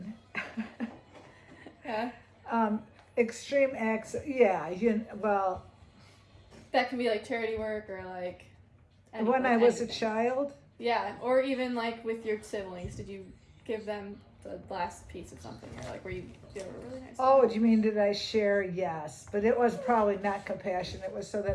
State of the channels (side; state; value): both; identical; correlation 1.00